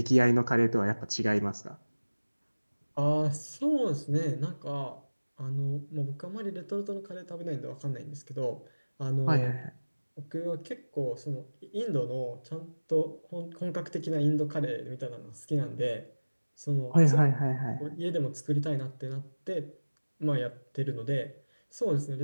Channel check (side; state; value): both; inverted; correlation -1.00